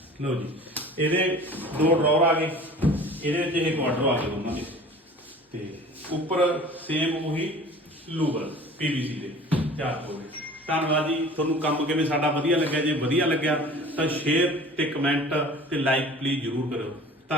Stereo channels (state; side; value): normal; both; correlation 0.44